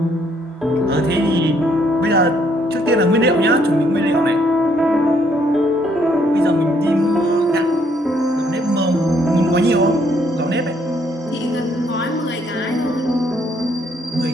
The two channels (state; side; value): normal; both; correlation 0.69